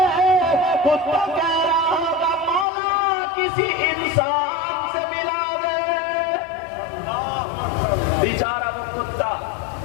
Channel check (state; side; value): drops out; right; at 2.7 s